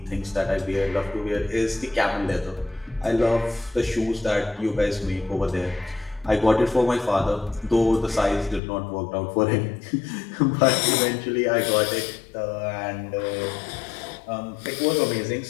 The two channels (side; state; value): right; drops out; at 8.6 s